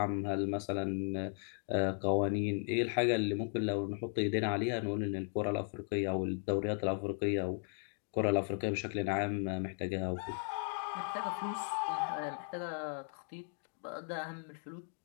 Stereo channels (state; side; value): silent; right; 54 dB below the other